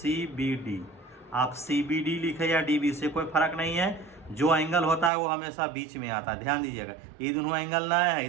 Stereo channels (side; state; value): left; drops out; at 5.1 s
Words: बी डी। आप सी बी डी लिखे या डी बी, से कोई फर्क नहीं है। जो एंगल होता है वो हमेशा बीच में आता है, ध्यान दीजिएगा। ये दोनों एंगल ना है, ये